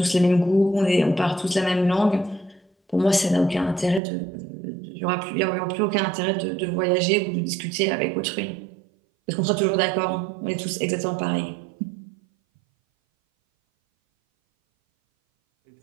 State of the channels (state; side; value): drops out; left; at 4.0 s